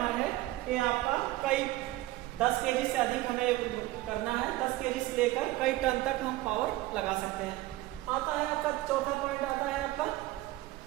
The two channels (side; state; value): left; quieter; 17.2 dB